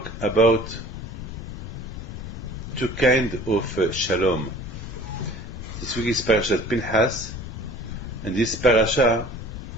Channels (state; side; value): noise; left; rumble, 9 dB below the sound